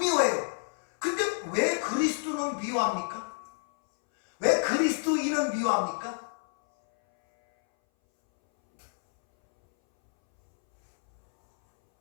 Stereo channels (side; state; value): right; silent; 59 dB below the other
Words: 근데 왜 그리스도는 미워합니까? 왜 그리스도인은 미워합니까?